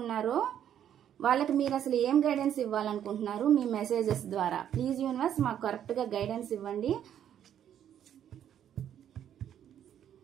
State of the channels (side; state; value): left; quieter; 10.0 dB